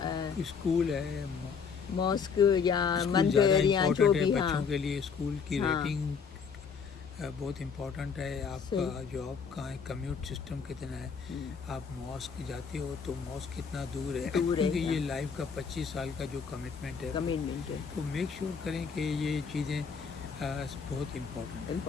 स्कूल है, मॉस्क या मंदिर या जो भी। बच्चों के लिए स्कूल की रेटिंग बहुत इम्पोर्टेंट है, आपका जॉब कहाँ है, कम्यूट सिस्टम कितना है, आप मॉस्क जाते हो तो मॉस्क कितना दूर है, क्योंकि ये लाइफ का 25 साल का जो कमिटमेंट है, तो मेक श्योर करें कि ये चीज़ें बहुत इम्पोर्टेंट।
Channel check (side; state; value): right; quieter; 6.1 dB